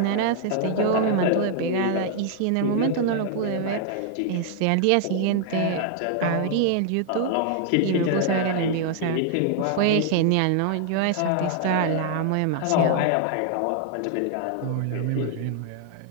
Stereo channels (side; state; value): both; different; correlation 0.00